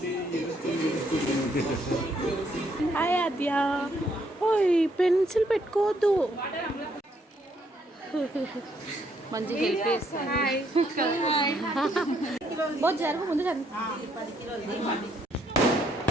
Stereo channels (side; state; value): both; normal; correlation 0.71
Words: హాయ్ ఆద్య ఓయ్ పెన్సిల్ పెట్టుకోవద్దు మంచిగా హెల్ప్ చేస్తాను జరుగు ముందు